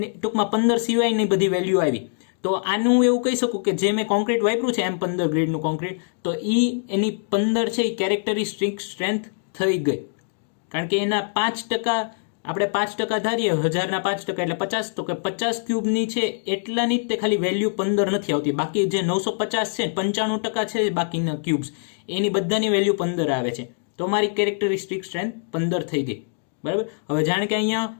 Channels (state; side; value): silent; right; digital silence